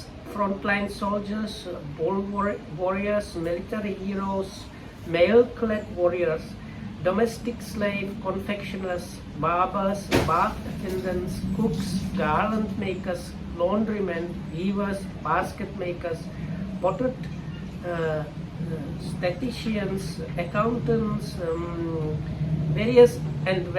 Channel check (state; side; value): identical; both; correlation 1.00